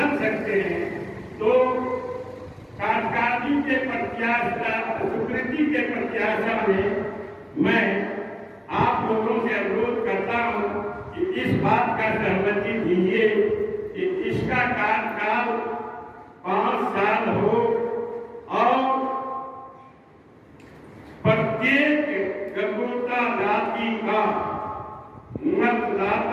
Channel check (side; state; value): both; identical; correlation 1.00